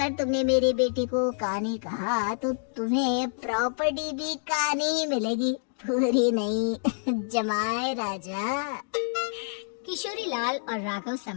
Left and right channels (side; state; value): right; silent; digital silence